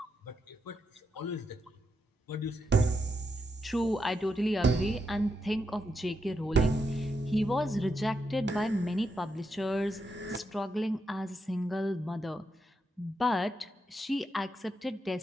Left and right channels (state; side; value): normal; both; correlation 0.83